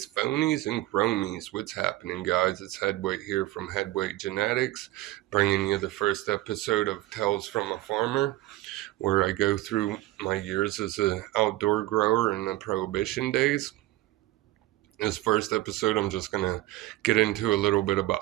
phonies, and chromies. What's happening, guys? It's Headweight here from Headweight Genetics, bringing you the first episode of Tales from a Farmer, where I go through my years as an outdoor grower in the Prohibition days. This first episode, I'm just going to get into a little bit about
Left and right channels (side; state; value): left; quieter; 17.0 dB